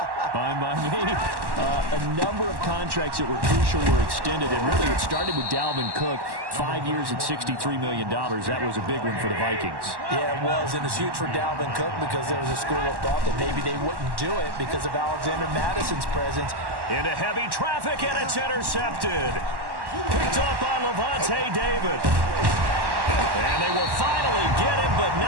Fine by me. A number of contracts that were crucial were extended, and really it started with Dalvin Cook, 5 years at $63 million. That was a big one for the Vikings. Yeah, it was, and it's huge for Dalvin Cook because there was a school of thought that maybe they wouldn't do it because of Alexander Madison's presence. Into heavy traffic, and it's intercepted. Picked up by Levante David. And they will finally get him, but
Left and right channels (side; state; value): left; late; 1.1 ms